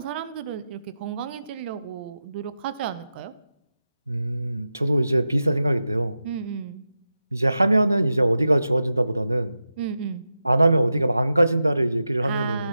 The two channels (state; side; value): inverted; both; correlation -0.91